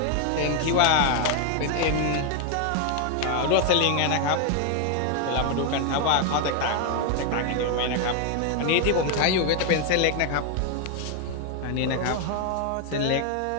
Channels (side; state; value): both; different; correlation 0.01